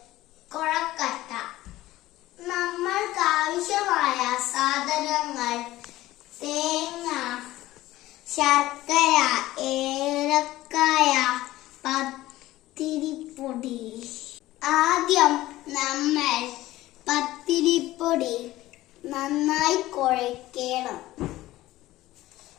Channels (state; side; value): quieter; right; 16.4 dB